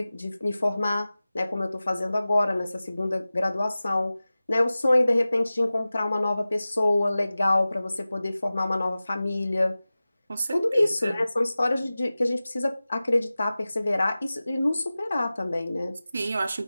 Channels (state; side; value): inverted; both; correlation -0.97